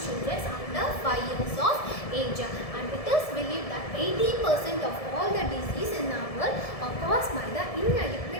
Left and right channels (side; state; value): right; late; 1.7 ms